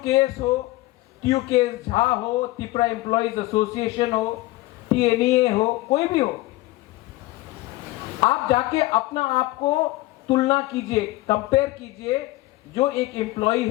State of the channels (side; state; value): right; quieter; 18.8 dB